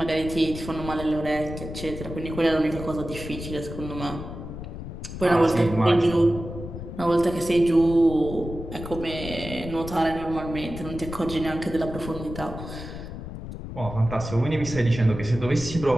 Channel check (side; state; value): left; noise; rumble, 9 dB below the sound